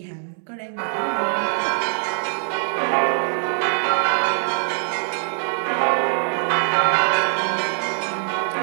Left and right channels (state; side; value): silent; left; 64 dB below the other